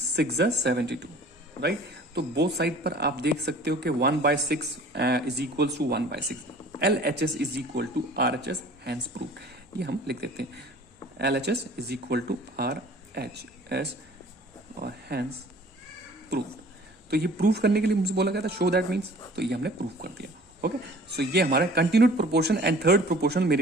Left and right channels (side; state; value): both; normal; correlation 0.48